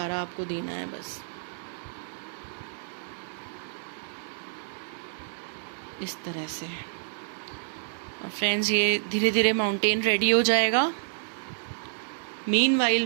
आपको देना है बस, इस तरह से। और फ्रेंड्स, ये धीरे धीरे माउंटेन रेडी हो जाएगा। मीनवाइल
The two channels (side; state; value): left; silent; digital silence